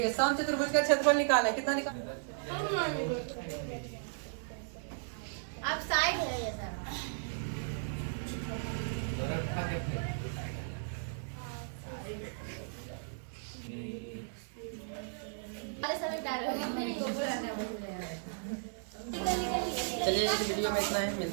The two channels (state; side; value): silent; left; 54 dB below the other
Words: समचतुर्भुज का क्षेत्रफल निकालें। कितना निकाल? आप साइड है ये सर। समय क्या चलिए इस वीडियो में इतना है।